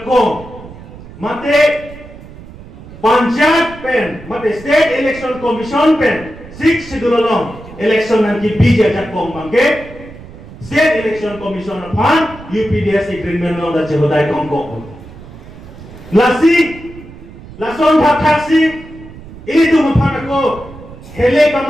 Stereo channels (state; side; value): noise; right; rumble, 17 dB below the sound